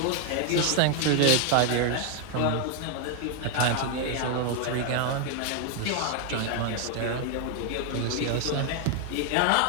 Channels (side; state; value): both; different; correlation 0.00